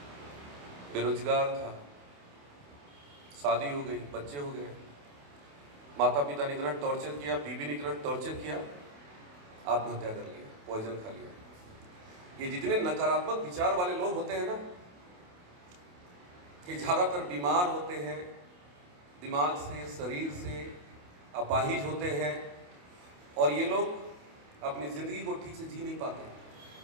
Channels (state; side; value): late; left; 28 ms